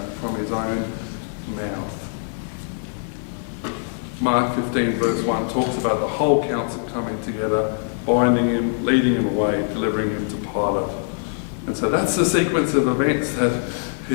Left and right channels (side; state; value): right; silent; digital silence